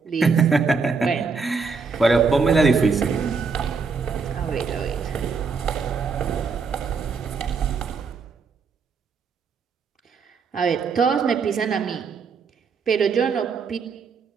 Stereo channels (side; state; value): left; quieter; 5.0 dB